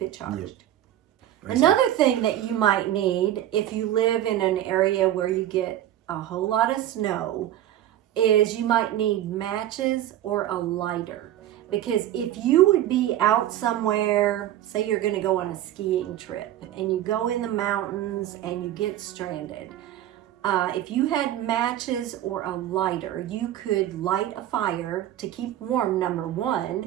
it charged. Yep. Another thing that you might need if you live in an area where you get a whole lot of snow is you might need matches or a lighter. Because if you would be out somewhere, say you're going to go on a skiing trip and you go in the mountains and you get stranded, if you had matches or a lighter, you could light a fire to keep warm, number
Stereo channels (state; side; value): quieter; left; 12.5 dB